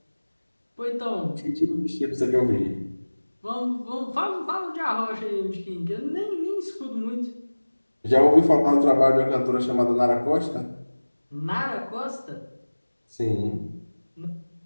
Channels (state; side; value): inverted; both; correlation -1.00